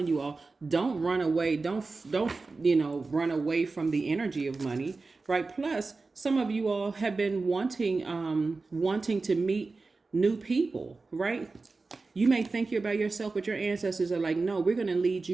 you all, don't run away. Don't run away from the energy of money, right? Plus, some of you all have been wanting to meet new people, right? You may think you're by yourself, but your ancestors are like, no, we're going to lead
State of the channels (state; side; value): quieter; left; 3.8 dB